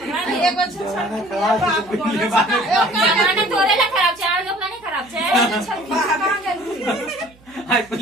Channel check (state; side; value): noise; right; hum, 28 dB below the sound